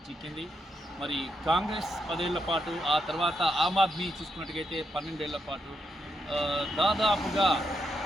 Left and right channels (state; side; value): normal; both; correlation 0.81